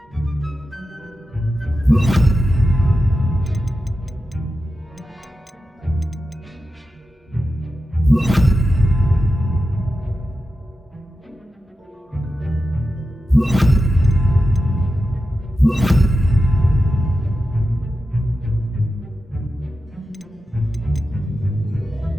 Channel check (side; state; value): both; normal; correlation 0.91